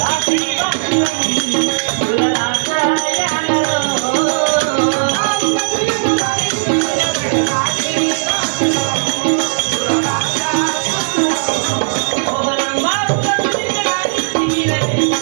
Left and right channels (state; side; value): silent; left; digital silence